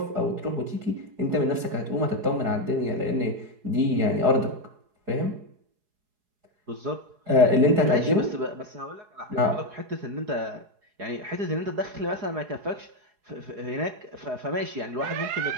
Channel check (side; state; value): left; late; 4.8 ms